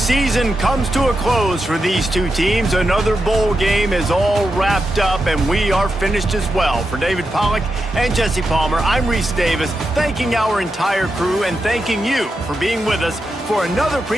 comes to a close for these two teams. Another bowl game is all wrapped up, and we are finished as well. For David Pollack and Jesse Palmer, I'm Reese Davis, thanking our entire crew and thanking you for being with us for another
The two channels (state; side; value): normal; both; correlation 0.87